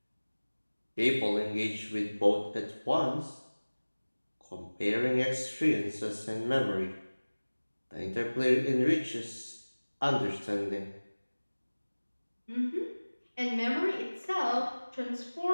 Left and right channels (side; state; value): both; inverted; correlation -1.00